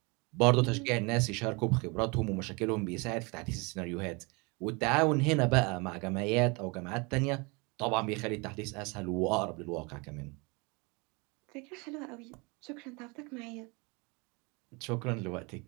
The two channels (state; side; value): quieter; left; 28.8 dB